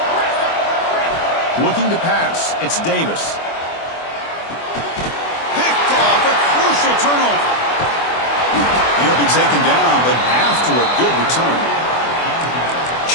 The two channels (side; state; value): right; late; 24 ms